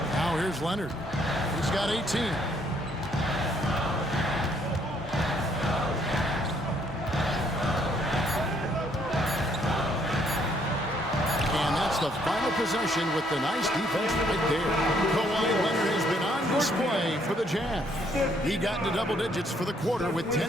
Now here's Leonard. He's got 18. the final possession with the nice defense right there. Kawhi Leonard has been on display for the Jazz. He got into double digits for the quarter with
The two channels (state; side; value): normal; both; correlation 0.68